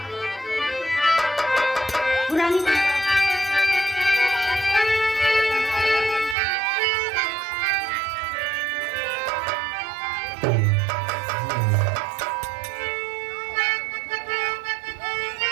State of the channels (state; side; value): drops out; left; at 6.4 s